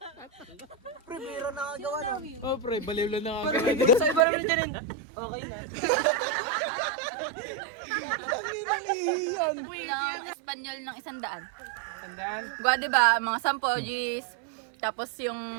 Pre, biro nakagawa na. Oh, pre, baliw lang nakagawa. Sa iba naman dyan. Okay na. Tangina niyan. Ng Espanyol ng 100. Tandaan. Gwa, diba? Mga 10 G's. Tapos yung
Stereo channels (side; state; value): left; drops out; at 4.2 s